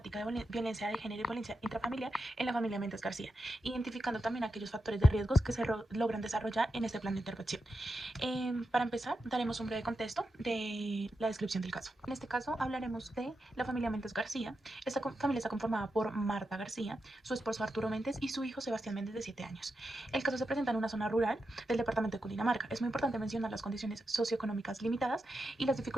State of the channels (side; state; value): both; normal; correlation 0.88